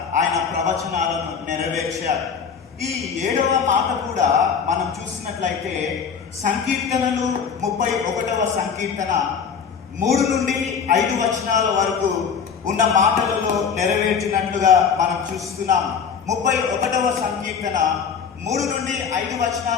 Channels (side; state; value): right; quieter; 6.6 dB